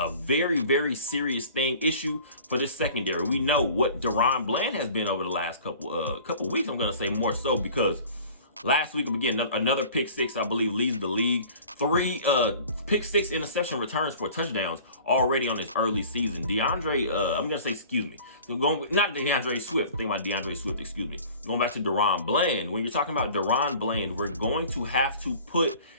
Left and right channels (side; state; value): both; inverted; correlation -0.45